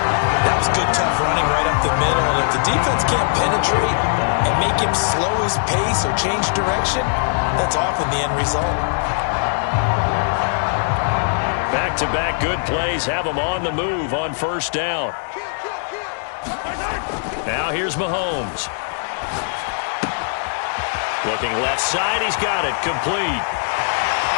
That was good, tough running right up the middle, and if the defense can't penetrate and make him slow his pace or change direction, that's often the end result. Back-to-back good plays have him on the move on 1st down. Now here's Mahomes. Looking left side, he's got it, complete.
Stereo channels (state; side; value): silent; right; digital silence